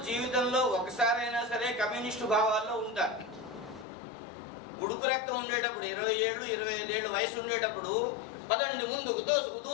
జీవితంలో ఒకసారైనా సరే కమ్యూనిస్టు భావాల్లో ఉంటారు. ఉడుకు రక్తం ఉండేటప్పుడు 20 ఏళ్ళు 25 ఏళ్ళు వయసు ఉండేటప్పుడు పదండి ముందుకు దూసుకు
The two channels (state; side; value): drops out; right; at 3.9 s